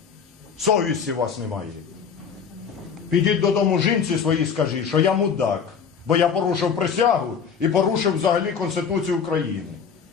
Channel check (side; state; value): right; quieter; 6.6 dB